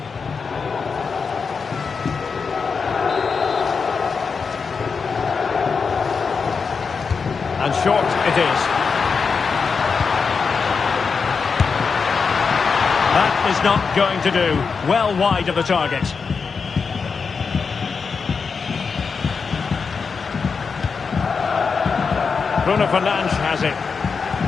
And short it is. That is not going to do. Well wide of the target. Bruno Fernandes has it.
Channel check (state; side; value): quieter; right; 5.3 dB